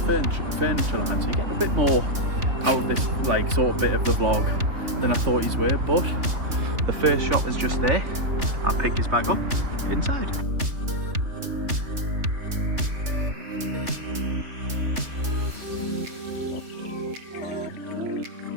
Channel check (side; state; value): left; late; 3.3 ms